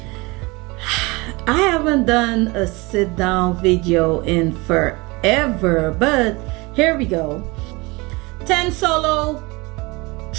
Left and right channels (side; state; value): left; quieter; 25.0 dB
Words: I haven't done a sit down video in forever, but here we go. 10 solo